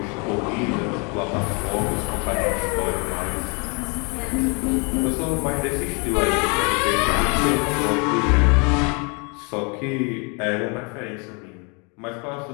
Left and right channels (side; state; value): right; quieter; 33.0 dB